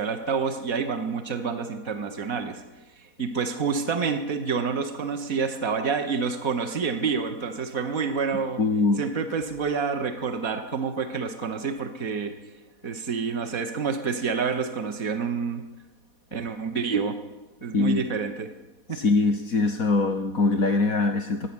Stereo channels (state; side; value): late; right; 4.1 ms